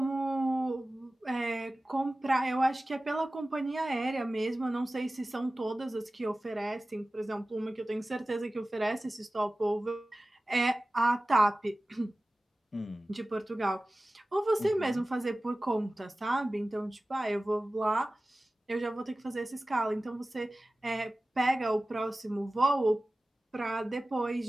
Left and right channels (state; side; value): normal; both; correlation 0.97